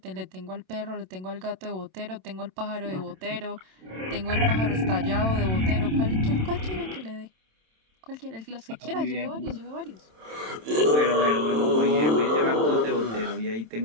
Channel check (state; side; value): late; left; 27 ms